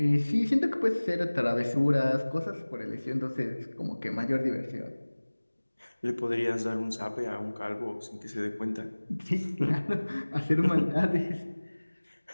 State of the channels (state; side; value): inverted; both; correlation -1.00